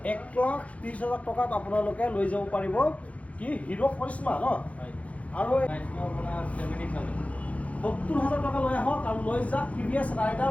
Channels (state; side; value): late; right; 0.066 ms